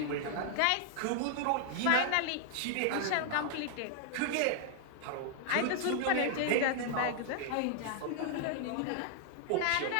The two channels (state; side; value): different; both; correlation 0.00